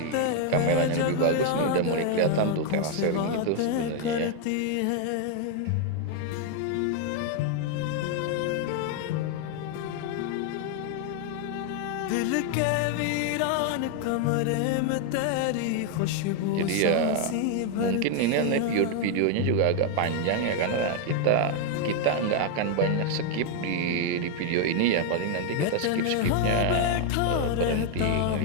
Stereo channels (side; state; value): both; different; correlation 0.01